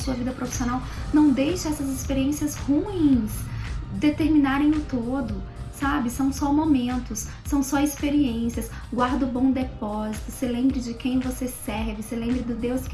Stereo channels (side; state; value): both; identical; correlation 1.00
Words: vida profissional. Não deixe essas experiências ruins determinarem o todo, sabe? São só momentos, são só experiências. Guarda o bom depósito, se lembre de quem você serve, se lembre do Deus